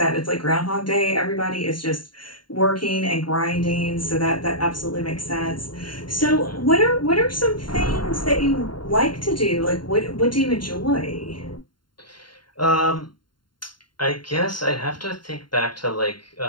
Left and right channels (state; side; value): late; right; 0.72 ms